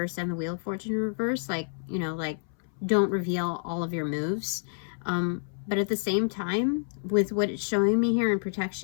and the Wheel of Fortune in reverse. Like, you know, like, don't reveal all of your moves. But at the same time, with what it's showing me here in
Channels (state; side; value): silent; right; 59 dB below the other